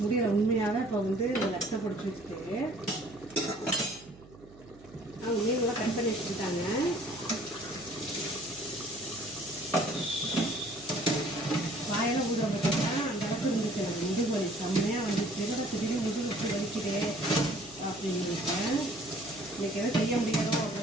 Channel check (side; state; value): right; noise; hum, 22 dB below the sound